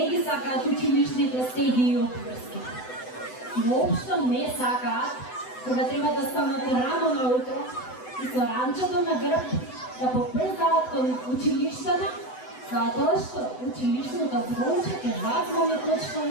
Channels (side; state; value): right; late; 7.9 ms